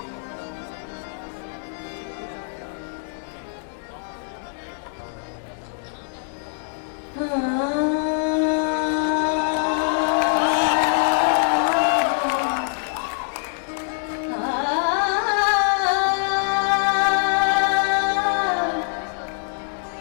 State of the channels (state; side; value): silent; right; digital silence